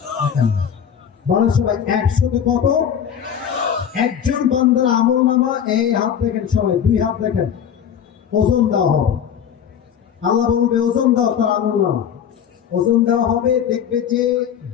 বলে সবাই 100-তে কত? একজন বান্দার আমল নামা, এই হাত দেখেন সবাই, 2 হাত দেখেন, ওজন দেওয়া হবে। আল্লাহ বলবে ওজন দাও তার আমল নামা, ওজন দেওয়া হবে। দেখবে যে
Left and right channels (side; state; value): right; quieter; 8.5 dB